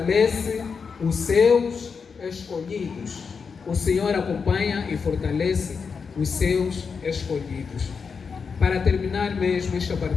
os seus escolhidos. O Senhor acompanha e fortalece os seus escolhidos. Para terminar mesmo esta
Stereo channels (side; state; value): right; quieter; 5.6 dB